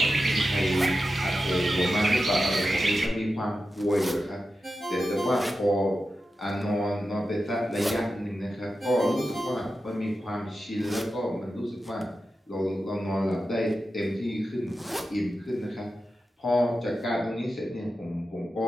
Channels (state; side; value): normal; both; correlation 0.91